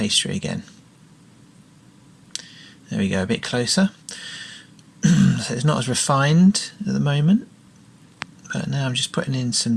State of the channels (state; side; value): identical; both; correlation 1.00